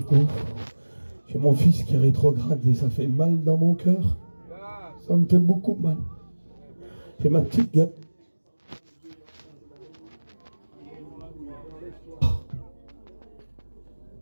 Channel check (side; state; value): both; inverted; correlation -1.00